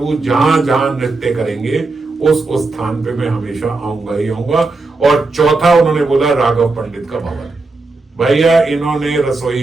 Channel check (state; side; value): quieter; left; 3.5 dB